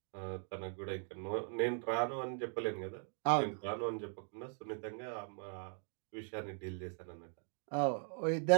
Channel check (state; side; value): silent; left; 51 dB below the other